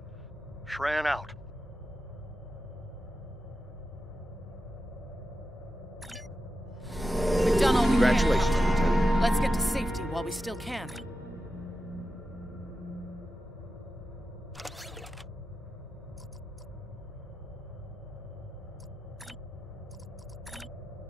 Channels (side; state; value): both; normal; correlation 0.91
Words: Shran out. We've done all we can. Congratulations, Lieutenant. Let's get to safety while we still can.